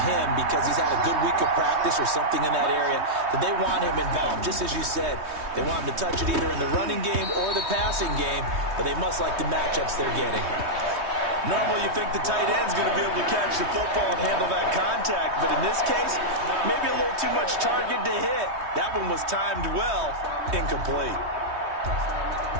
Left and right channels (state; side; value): late; left; 3.2 ms